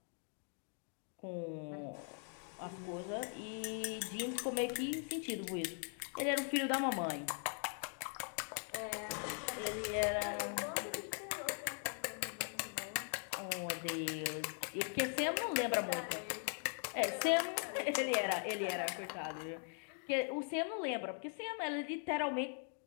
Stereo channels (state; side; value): silent; right; 51 dB below the other